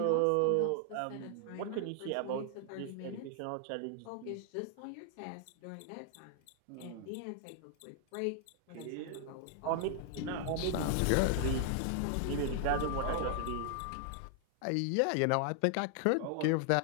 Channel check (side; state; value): both; different; correlation 0.00